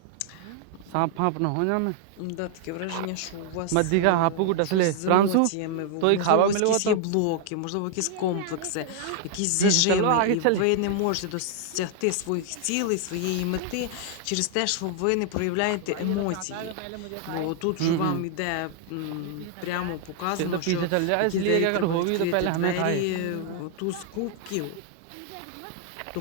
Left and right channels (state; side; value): different; both; correlation 0.00